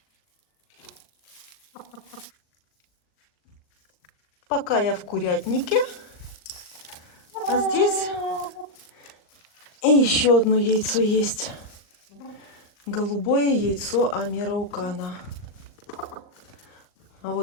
Пока я в курятнике, а здесь и еще одно яйцо есть. Голубое яйцо Амераукана. А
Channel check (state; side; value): late; right; 39 ms